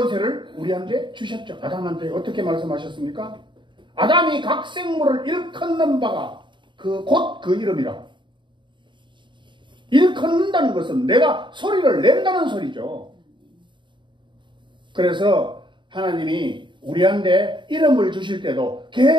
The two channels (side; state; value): left; late; 0.23 ms